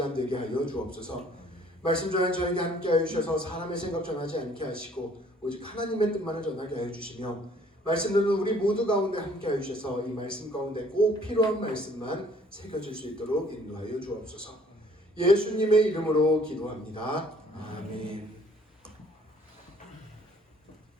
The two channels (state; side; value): normal; both; correlation 0.58